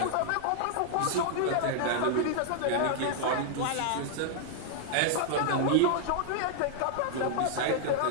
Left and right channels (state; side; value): different; both; correlation -0.01